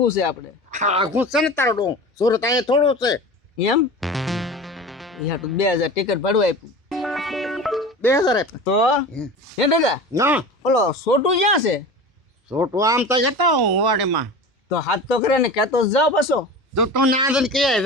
છે આપણે આઘું છે ને તારો ડો સુરત અહીંયા થોડું છે એમ. યા તો 2,000 ટિકિટ ભાડું આપ્યું 2,000 તો હે દાદા ના ઓલો છોટું ક્યાં છે? છોટું આમ તો જતો હું વાડીમાં તો હાથ તો કરે ને કહેતો જ જાઓ પાછો. તો તું ના દે કે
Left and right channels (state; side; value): normal; both; correlation 0.33